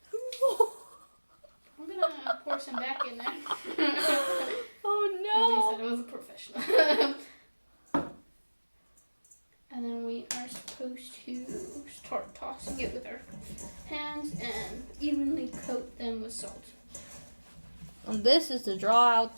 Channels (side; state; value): both; inverted; correlation -1.00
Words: I'm gonna pour some back in there. Oh At least I was a professional. And then we are supposed to start tossing it with our hands and evenly coat them with salt. And this is to draw out